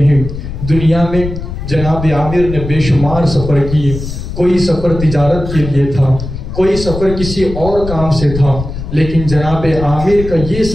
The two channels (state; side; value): noise; left; rumble, 8 dB below the sound